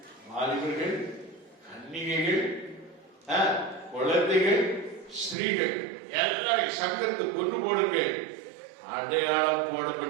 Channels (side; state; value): left; drops out; at 5.4 s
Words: வாலிபர்கள், கன்னிகைகள், குழந்தைகள், ஸ்திரீகள் எல்லாரும் சங்கரித்து கொன்று போடுங்கள். அடையாளம்